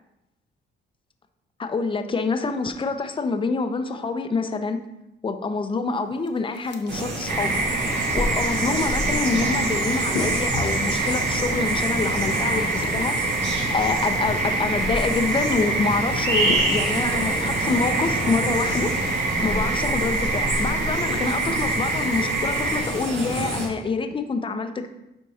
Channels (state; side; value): normal; both; correlation 0.40